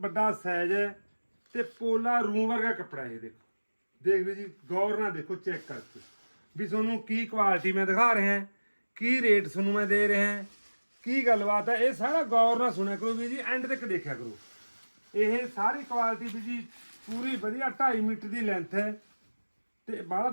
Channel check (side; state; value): both; inverted; correlation -1.00